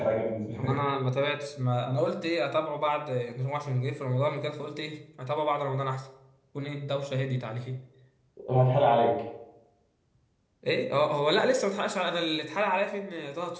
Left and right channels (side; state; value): both; identical; correlation 1.00